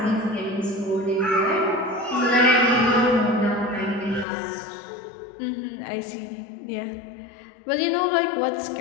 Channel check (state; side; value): drops out; right; at 4.2 s